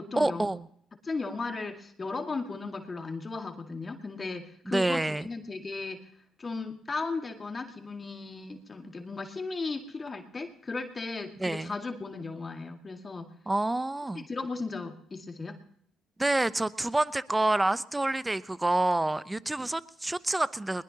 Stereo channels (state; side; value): normal; both; correlation 0.95